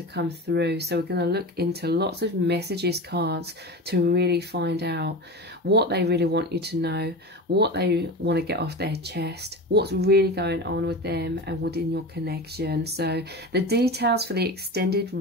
come through. So we're going to look into lots of messages cards to really find out what they really want you to know, what they want to get off their chest, what's really going on with them and within your connection. So the details for the extended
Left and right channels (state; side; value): normal; both; correlation 0.27